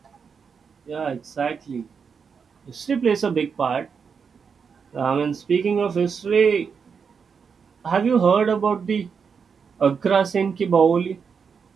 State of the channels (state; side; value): quieter; left; 6.1 dB